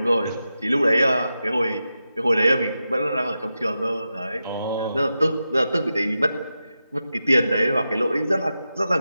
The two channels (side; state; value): both; inverted; correlation -0.90